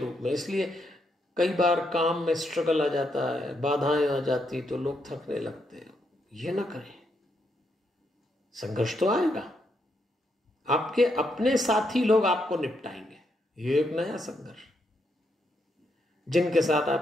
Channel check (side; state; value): both; normal; correlation 0.78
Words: में। इसलिए कई बार काम में स्ट्रगल आ जाता है, बाधाएं आ जाती, तो लोग थकने लगते हैं। ये ना करें, संघर्ष तो आएगा, आपके अपने साथी लोग आपको निपटाएंगे। ये एक नया संघर्ष। जिनके साथ